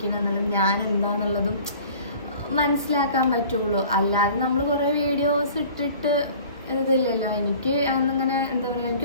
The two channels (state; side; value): inverted; both; correlation -0.47